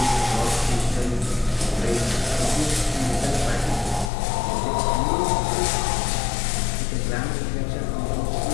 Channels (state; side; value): drops out; right; at 4.1 s